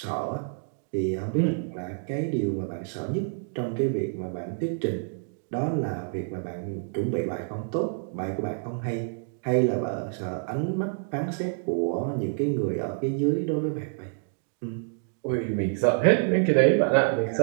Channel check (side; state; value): left; silent; digital silence